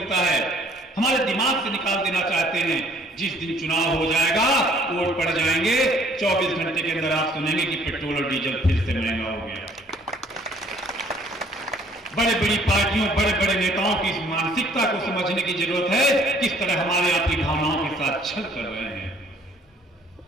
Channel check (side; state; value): both; normal; correlation 0.59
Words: है। हमारे दिमाग से निकाल देना चाहते हैं। जिस दिन चुनाव हो जाएगा, वोट पड़ जाएंगे, 24 घंटे के अंदर आप सुनेंगे कि पेट्रोल और डीजल फिर से महंगा हो गया। बड़े बड़ी पार्टियों, बड़े बड़े नेताओं की इस मानसिकता को समझने की जरूरत है, किस तरह हमारे आपकी भावनाओं के साथ छल कर रहे हैं।